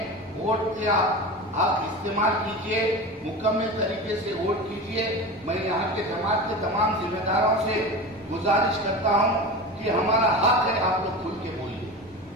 वोट का आप इस्तेमाल कीजिए, मुकम्मल तरीके से वोट कीजिए। मैं यहाँ के जमात के तमाम जिम्मेदारों से गुजारिश करता हूँ कि हमारा हक है, आप लोग खुल के बोलिए।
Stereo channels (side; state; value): both; normal; correlation 0.29